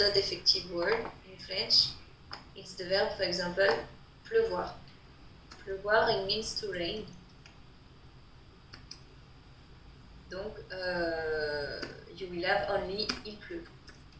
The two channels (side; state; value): both; identical; correlation 1.00